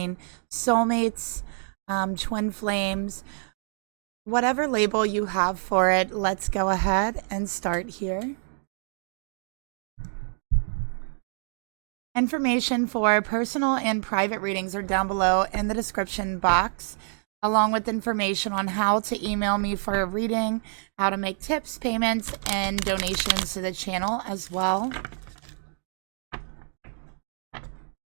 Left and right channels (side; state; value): left; silent; 60 dB below the other